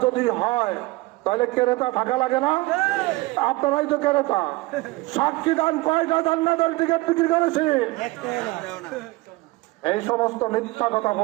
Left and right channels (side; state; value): left; quieter; 21.6 dB